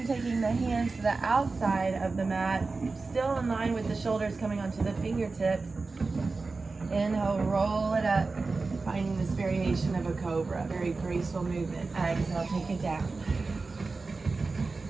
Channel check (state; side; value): quieter; left; 3.9 dB